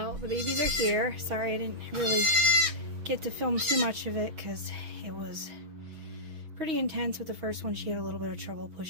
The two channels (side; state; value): left; late; 6.2 ms